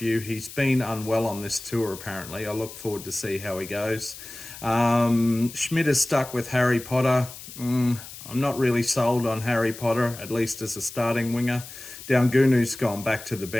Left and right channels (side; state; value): left; noise; hiss, 14 dB below the sound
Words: He's been unwell on this tour apparently. I look forward to see how he goes. Schmidt is stuck with Harry Potter. I'm not really sold on Harry Potter, at least as a starting winger. Daungunu's gone back to the